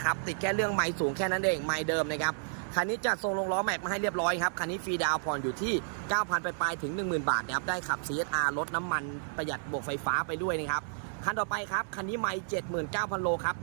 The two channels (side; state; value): left; silent; digital silence